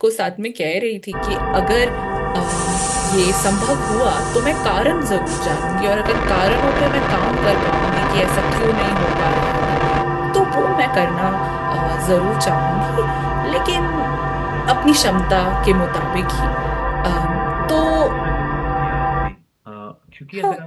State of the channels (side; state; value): both; identical; correlation 1.00